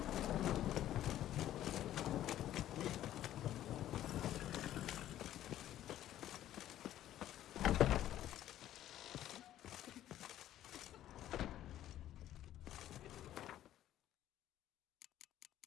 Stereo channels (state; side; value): quieter; right; 12.6 dB